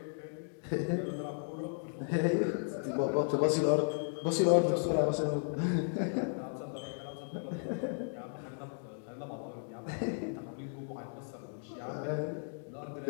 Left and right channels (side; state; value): right; silent; digital silence